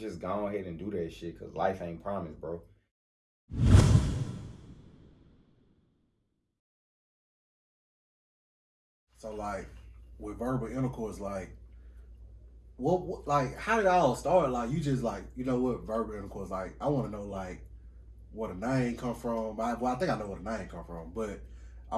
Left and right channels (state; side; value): identical; both; correlation 1.00